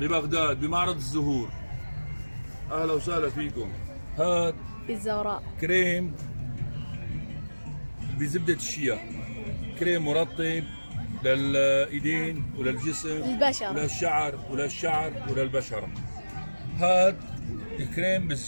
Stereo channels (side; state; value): both; inverted; correlation -1.00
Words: بمعرض الزهور. اهلا وسهلا فيكم. هاد في الزوراء كريم بزبدة الشيا، كريم مرطب للايدين وللجسم للبشرة وللشعر وللبشرة. هاد الكريم